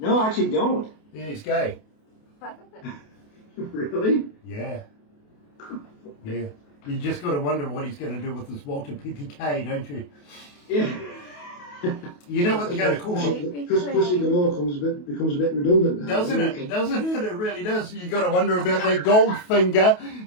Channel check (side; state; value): right; late; 28 ms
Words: No, I actually don't. Yeah, he's gay. Really? Yeah. You just got to wonder what he's going to do with this Walter PPK, don't you? Yeah. You know what they're going to call him? Because Pussy Galore becomes a bit redundant now. Doesn't it? Doesn't it? It really does. You got to wonder about that Goldfinger.